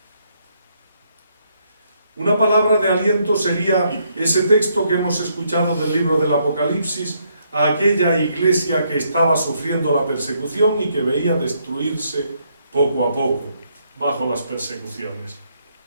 Una palabra de aliento sería ese texto que hemos escuchado del libro del Apocalipsis a aquella iglesia que estaba sufriendo la persecución y que veía destruirse poco a poco bajo las persecuciones.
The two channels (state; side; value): inverted; both; correlation -0.73